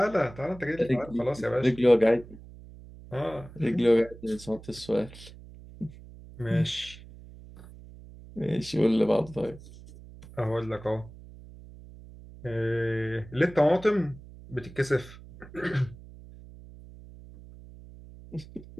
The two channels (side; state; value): right; noise; hum, 18 dB below the sound